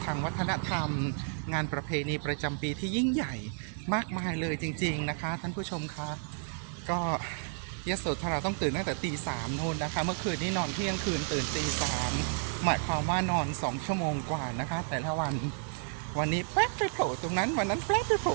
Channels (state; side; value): silent; left; 57 dB below the other